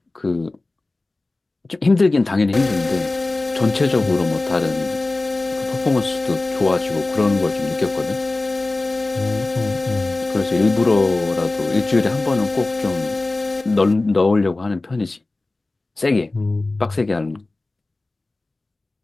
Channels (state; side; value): quieter; right; 3.1 dB